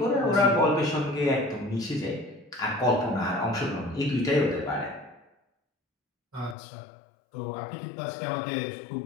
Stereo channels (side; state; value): right; drops out; at 6.6 s